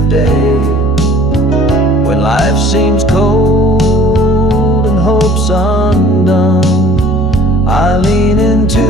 day. When life seems cold and hope's undone, I lean into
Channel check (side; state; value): both; normal; correlation 0.51